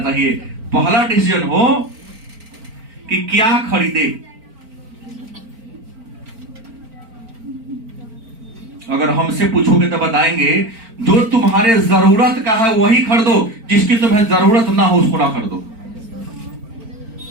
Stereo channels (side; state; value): left; late; 4.4 ms